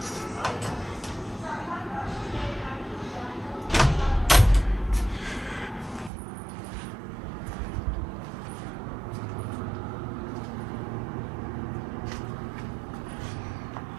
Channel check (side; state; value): left; drops out; at 6.1 s